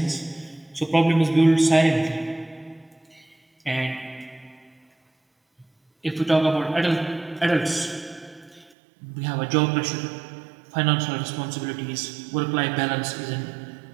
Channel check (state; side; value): drops out; left; at 8.7 s